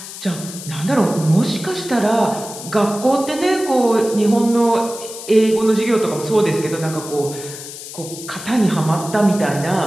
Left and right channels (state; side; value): noise; left; hiss, 12 dB below the sound